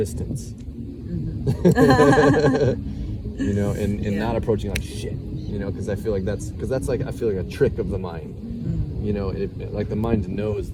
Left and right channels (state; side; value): identical; both; correlation 1.00